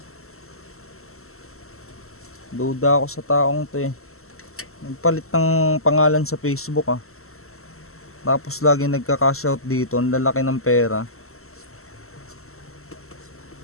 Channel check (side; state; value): right; late; 0.63 ms